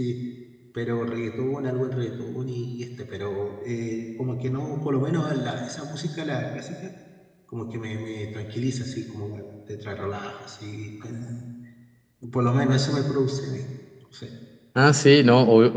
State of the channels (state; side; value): identical; both; correlation 1.00